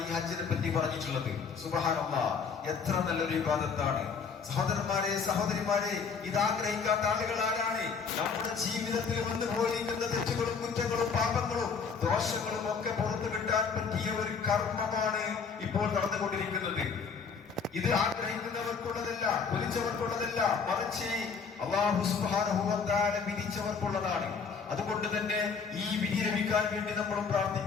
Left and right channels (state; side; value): quieter; right; 5.7 dB